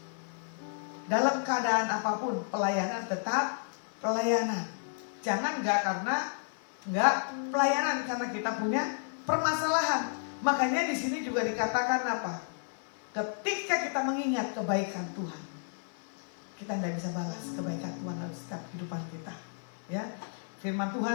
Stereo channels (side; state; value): right; silent; 56 dB below the other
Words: Dalam keadaan apapun, pelayanan tetap pelayanan. Jangan karena pelayanan karena kita punya permasalahan. Makanya di sini juga dikatakan apa? Ketika kita mengingat kebaikan Tuhan, kita nggak bisa balas kebaikan Tuhan dalam setiap kehidupan kita. Ya, firman